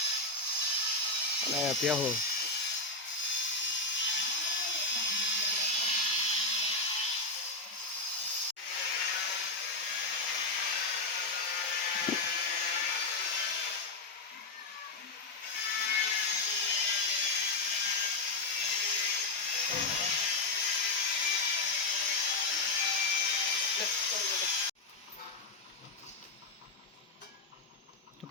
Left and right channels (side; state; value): right; quieter; 3.1 dB